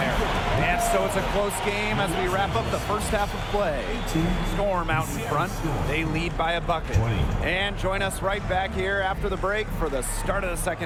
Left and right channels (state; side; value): identical; both; correlation 1.00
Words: And so it's a close game as we wrap up the first half of play. Storm out in front. They lead by a bucket. And join us right back here after the break for the start of the